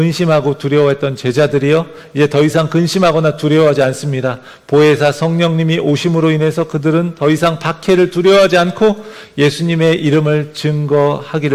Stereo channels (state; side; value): identical; both; correlation 1.00